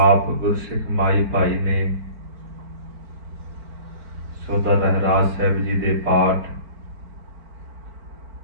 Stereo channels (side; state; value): left; late; 4.4 ms